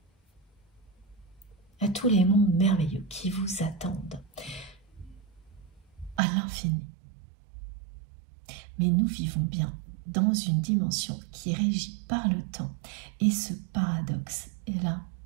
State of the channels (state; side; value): drops out; left; at 6.2 s